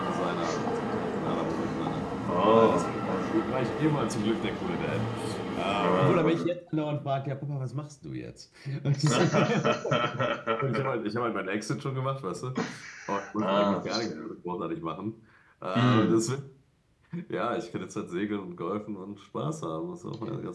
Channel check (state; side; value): identical; both; correlation 1.00